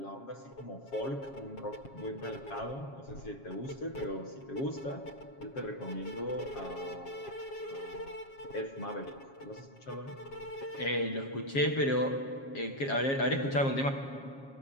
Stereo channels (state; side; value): late; right; 7.3 ms